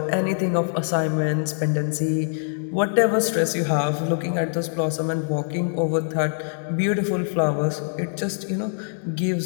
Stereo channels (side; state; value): right; silent; digital silence